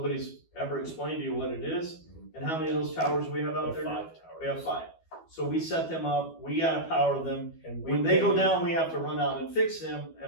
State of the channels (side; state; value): right; late; 12 ms